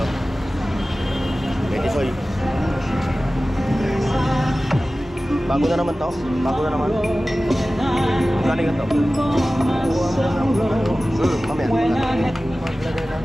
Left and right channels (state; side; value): normal; both; correlation 0.96